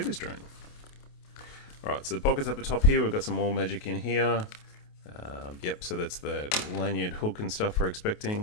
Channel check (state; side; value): late; right; 28 ms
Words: this drone. All right, so the pockets up the top here, we've got some more magic in here. Yep, so that's the lanyard hook and stuff we're